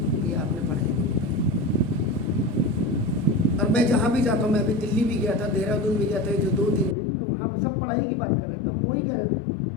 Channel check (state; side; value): drops out; right; at 7.0 s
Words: ये आपने पढ़ाई में बिताई। और मैं जहाँ भी जाता हूँ, मैं अभी दिल्ली भी गया था, देहरादून भी गया था, जो 2-3 दिन, तो वहाँ पर सब पढ़ाई की बात कर रहे थे। हम वही कह रहे थे,